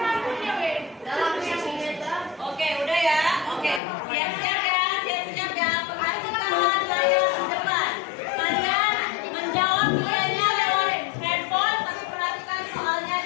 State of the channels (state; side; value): drops out; right; at 3.8 s